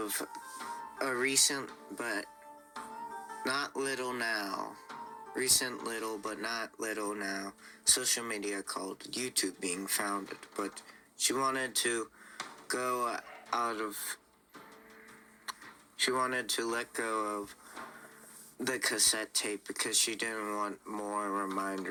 a recent but not little now. Recent little but not little now social media called YouTube being founded, but she wanted to let go of the cassette tape because she didn't want more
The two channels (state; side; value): identical; both; correlation 1.00